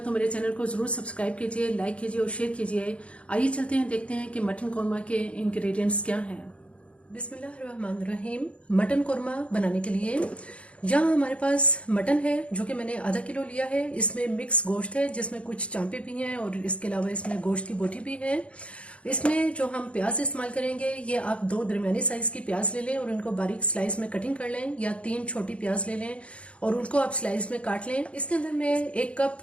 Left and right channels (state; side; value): late; right; 0.061 ms